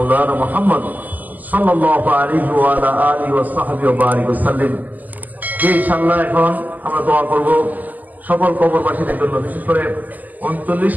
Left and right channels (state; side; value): late; left; 0.082 ms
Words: محمد صلى الله عليه وعلى آله وصحبه وبارك وسلم। ইনশাআল্লাহ এখন আমরা দোয়া করব সকল কবরবাসীদের জন্য, বিশেষ করে